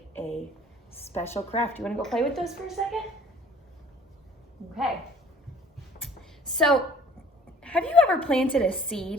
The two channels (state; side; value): normal; both; correlation 0.52